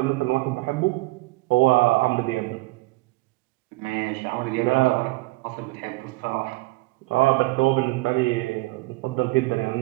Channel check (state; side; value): quieter; left; 21.8 dB